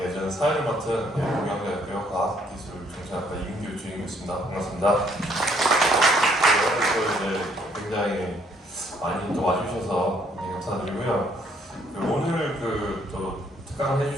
저는 사회를 맡은 동양대학교 과학기술정책학과 이민규 주임이었습니다. 반갑습니다. 네, 또 이제 굉장히 많이 또 와주셔서 굉장히 감사드리고요. 오늘 또 특강을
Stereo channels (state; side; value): normal; both; correlation 0.66